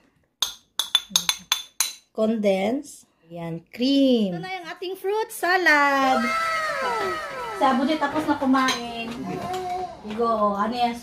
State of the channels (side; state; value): both; identical; correlation 1.00